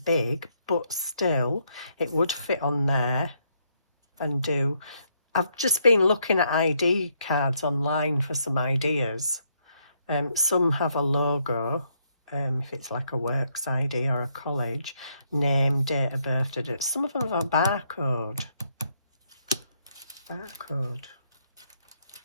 big, but still, it would fit on there and do. I've just been looking at ID cards online for some ideas. Some have a logo, if it's like a works ID or a college, name, date of birth. Some of them have a barcode. Barcode.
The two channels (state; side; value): inverted; both; correlation -0.74